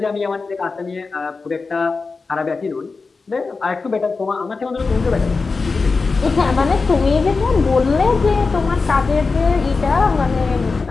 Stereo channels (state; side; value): quieter; right; 4.2 dB